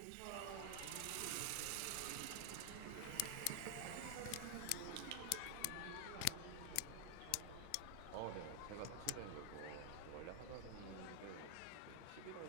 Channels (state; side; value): different; both; correlation 0.00